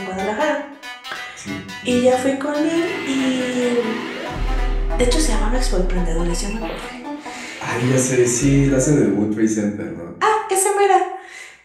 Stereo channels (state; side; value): identical; both; correlation 1.00